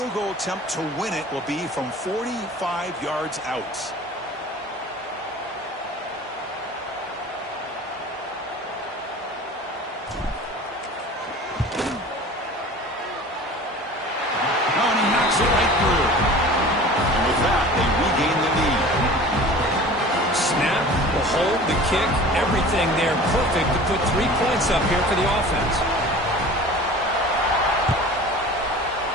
goal attempt to win it will be from 45 yards out. Oh, and he knocks it right through. And with that, they regain the lead. Snap, the hold, the kick, everything there perfect to put 3 points up here for the offense.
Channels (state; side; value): normal; both; correlation 0.41